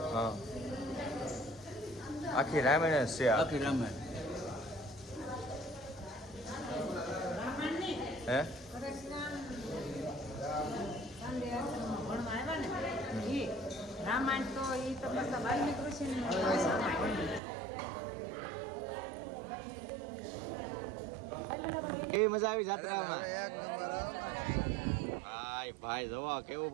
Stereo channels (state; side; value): drops out; left; at 17.4 s